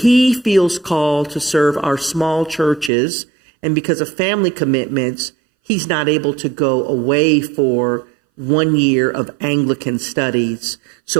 feels called to serve our small churches. And because of family commitments, he's not able to go away for 1 year of Anglican studies.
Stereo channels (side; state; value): left; drops out; at 2.9 s